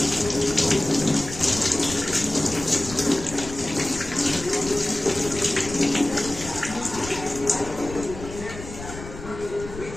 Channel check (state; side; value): noise; left; rumble, 12 dB below the sound